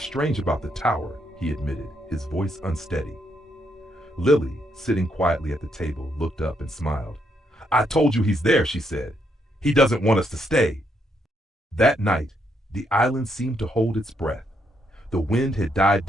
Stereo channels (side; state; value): both; normal; correlation 0.76